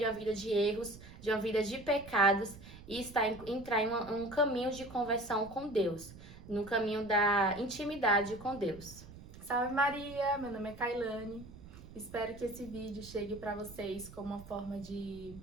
uma vida de erros, de uma vida de pecados e entrar em um caminho de conversão com Deus, no caminho da intimidade com Deus. Salve Maria, meu nome é Kailane. Espero que esse vídeo chegue para vocês como uma forma de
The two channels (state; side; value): noise; right; rumble, 17 dB below the sound